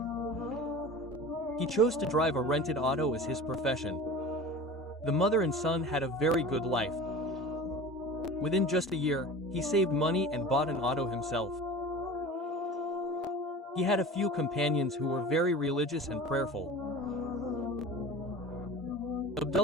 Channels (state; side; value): normal; both; correlation 0.36